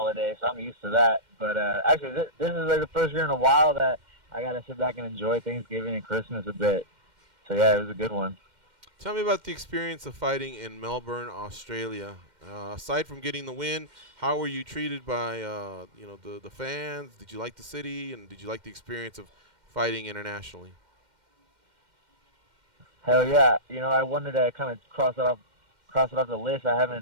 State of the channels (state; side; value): late; left; 2.1 ms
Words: so I'm used to that. But actually, this is like the first year in a while that I got to sit back and enjoy Thanksgiving and Christmas a bit. So yeah, it was a good one. Tell me about the experience of fighting in Melbourne, Australia. Aside from getting the win, how were you treated by the fans? Did you like the city, and did you like the experience of fighting internationally? Hell yeah! I wanted to kind of cross it off the list.